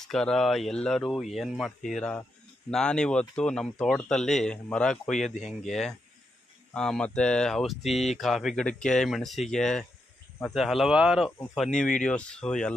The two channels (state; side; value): normal; both; correlation 0.83